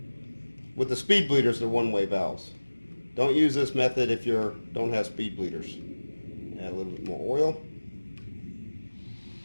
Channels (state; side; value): inverted; both; correlation -1.00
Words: With the speed bleeders, they're one-way valves. Don't use this method if you don't have speed bleeders. Add a little bit more oil.